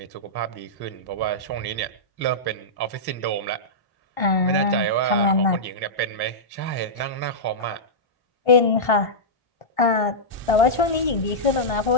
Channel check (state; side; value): late; right; 1.5 ms